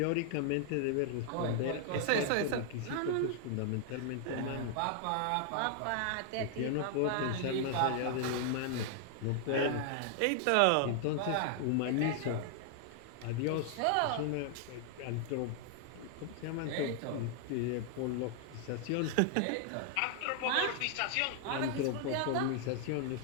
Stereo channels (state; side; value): different; both; correlation 0.00